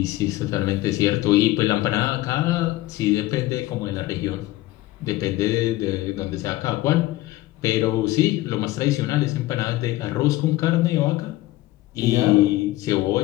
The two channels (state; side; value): quieter; right; 17.2 dB